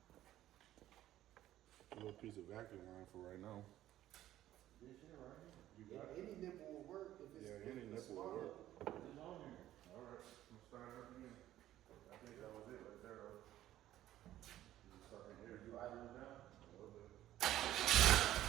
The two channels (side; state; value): left; quieter; 13.5 dB